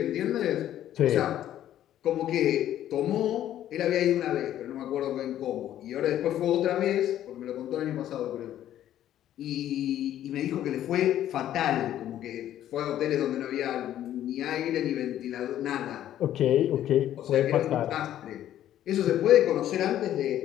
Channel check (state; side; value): quieter; right; 11.9 dB